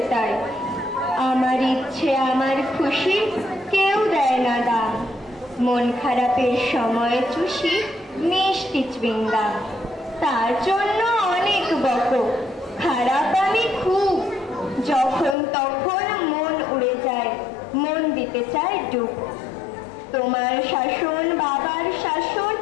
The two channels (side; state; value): right; drops out; at 15.4 s